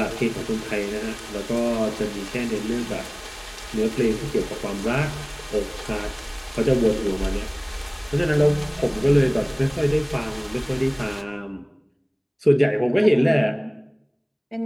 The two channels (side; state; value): both; identical; correlation 1.00